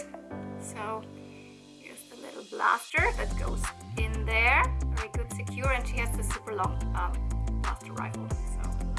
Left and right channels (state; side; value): identical; both; correlation 1.00